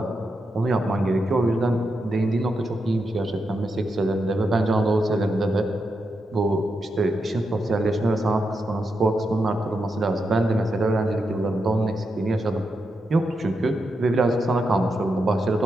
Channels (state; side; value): normal; both; correlation 0.85